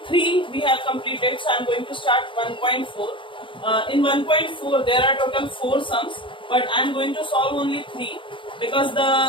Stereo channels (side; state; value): right; late; 0.25 ms